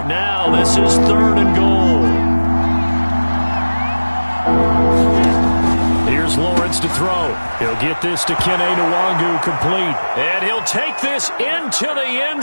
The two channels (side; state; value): both; inverted; correlation -1.00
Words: now this is third and goal. Here's Lawrence to throw. He'll get this to Kene Nwangu complete. And he'll take this into the end